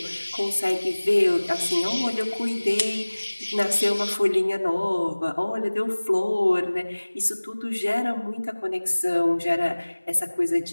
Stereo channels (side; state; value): both; inverted; correlation -1.00